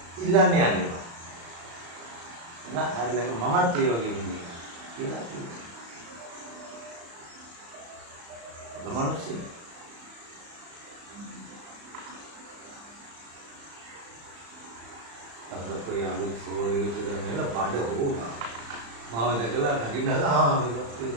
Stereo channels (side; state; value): left; late; 35 ms